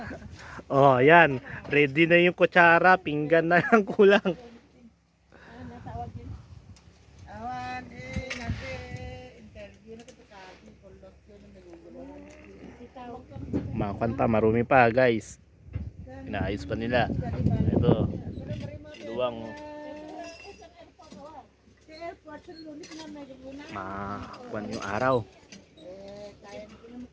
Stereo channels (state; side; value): identical; both; correlation 1.00